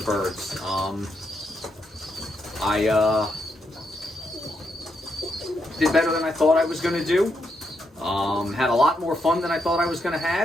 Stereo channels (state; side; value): normal; both; correlation 0.80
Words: I did better than I thought I was going to do. Had a lot more fun than I thought I was going to